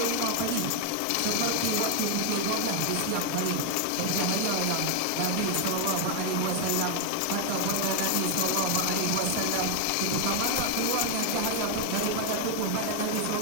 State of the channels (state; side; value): different; both; correlation 0.00